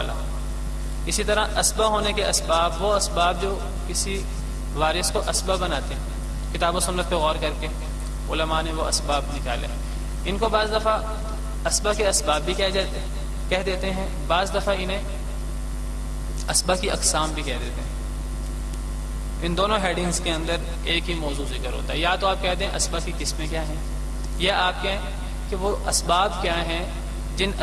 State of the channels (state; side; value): identical; both; correlation 1.00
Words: اسی طرح اسبا ہونے کے اسباب، وہ اسباب جو کسی وارث کو اسبا بناتے ہیں، کتاب و سنت پہ غور کر کے علماء نے وہ اسباب نکالے. ان کو بعض دفعہ اسبا کے اسباب بھی کہہ دیتے ہیں، بعض دفعہ انہیں اسبا کی اقسام بھی کہہ دیتے ہیں. ان دونوں ہیڈنگز کے اندر ایک ہی موضوع ذکر ہوتا ہے. یا تو آپ کہہ دیں اسبا کی قسمیں کیا ہیں، یا آپ کہیں کہ وہ اسباب کیا ہیں جن